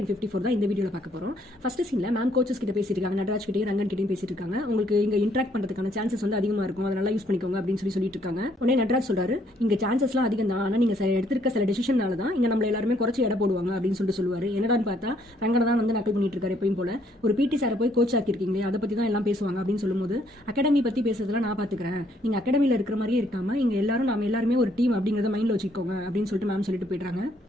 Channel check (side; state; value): both; normal; correlation 0.68